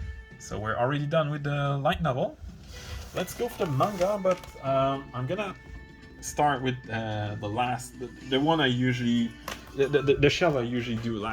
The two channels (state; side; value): identical; both; correlation 1.00